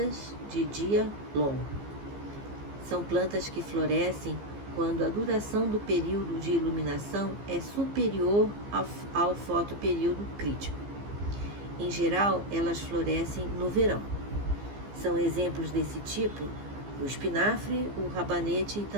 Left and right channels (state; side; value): late; left; 15 ms